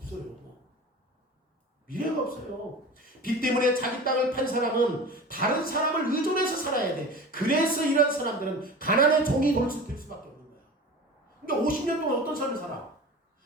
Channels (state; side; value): normal; both; correlation 0.35